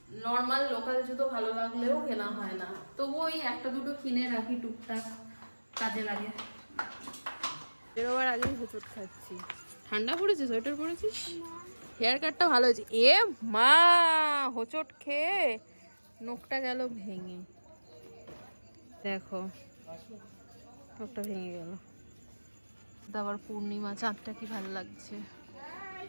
নর্মাল লোকাল জুতো ভালো লাগলেও কেনা হয় না, তবু ওই একটা দুটো কিনে রাখি, টুকটাক কাজে লাগে। বেরোবার আগেই হোঁচট খাচ্ছি। ঠান্ডা পড়েছে, সোয়েটার পরেছিস? হেয়ার কাটটা ভালো হয়েছে। এ মা, হোঁচট খেয়ে নখটা গেল ভেঙে, দেখো নখটা ভেঙে গেল। আবার পূর্ণিমা, চাঁদটা কি ভালো লাগছে।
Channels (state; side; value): inverted; both; correlation -1.00